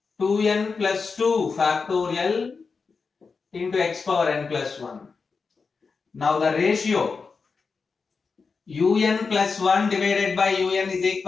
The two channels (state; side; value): quieter; right; 4.9 dB